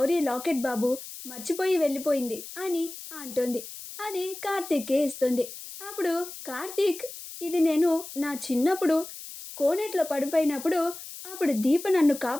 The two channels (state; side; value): noise; left; hiss, 12 dB below the sound